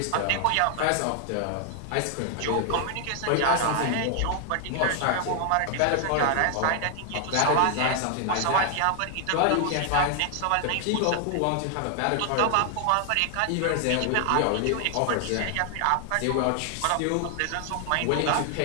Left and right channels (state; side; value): different; both; correlation 0.00